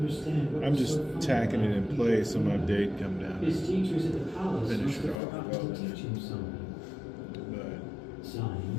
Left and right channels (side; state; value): right; drops out; at 5.2 s